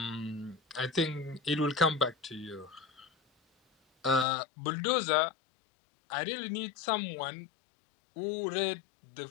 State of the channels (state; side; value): drops out; right; at 4.2 s